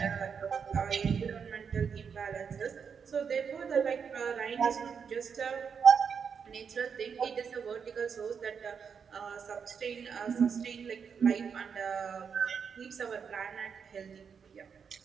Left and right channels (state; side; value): quieter; left; 6.5 dB